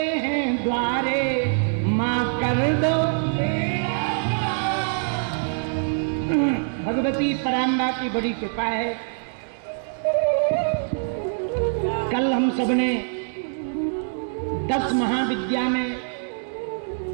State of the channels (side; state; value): left; silent; 61 dB below the other